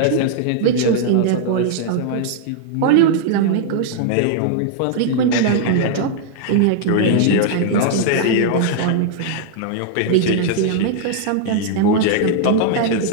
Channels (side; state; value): both; different; correlation -0.01